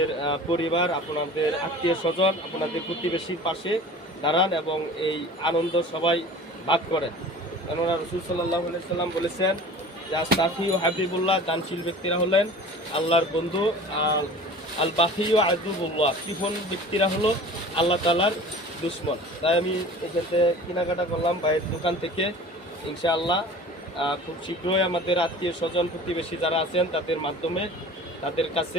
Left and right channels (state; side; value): normal; both; correlation 0.41